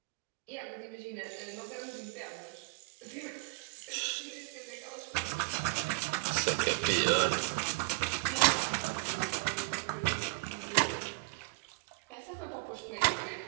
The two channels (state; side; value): quieter; left; 29.3 dB